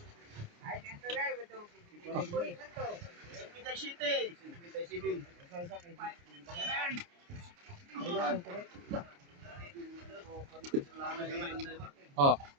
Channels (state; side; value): late; left; 29 ms